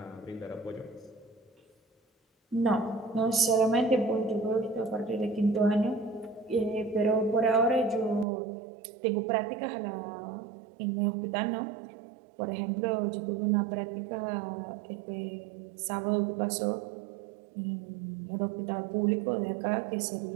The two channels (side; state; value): left; drops out; at 8.2 s